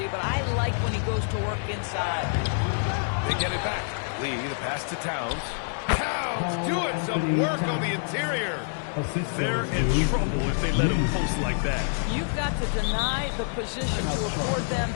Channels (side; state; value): right; silent; digital silence